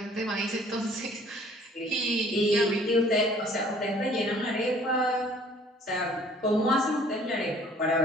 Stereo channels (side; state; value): both; normal; correlation 0.55